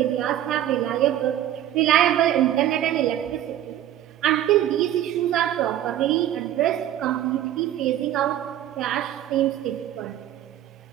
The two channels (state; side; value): quieter; left; 12.1 dB